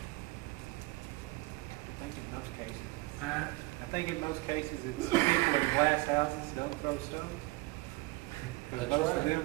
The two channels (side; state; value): left; quieter; 22.0 dB